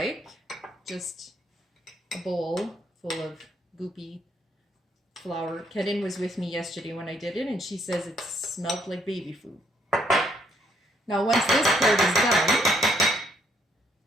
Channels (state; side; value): normal; both; correlation 0.71